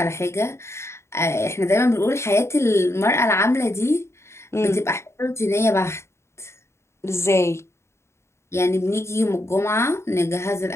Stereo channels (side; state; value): right; late; 0.13 ms